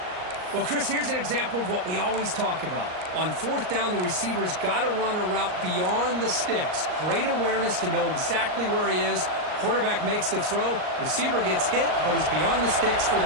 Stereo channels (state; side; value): late; left; 39 ms